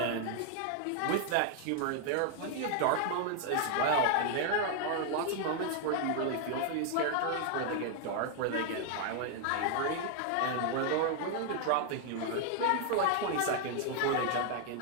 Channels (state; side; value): different; both; correlation 0.00